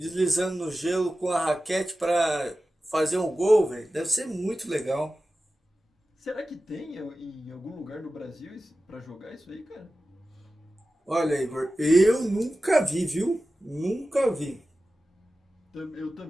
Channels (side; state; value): both; normal; correlation 0.95